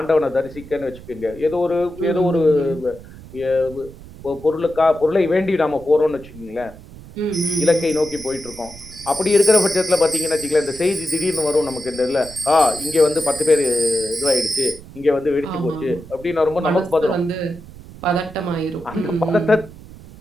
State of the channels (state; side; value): noise; right; rumble, 18 dB below the sound